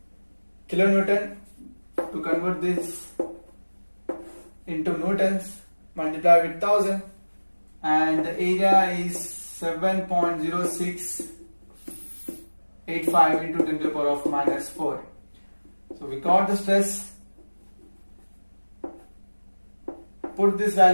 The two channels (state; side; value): inverted; both; correlation -1.00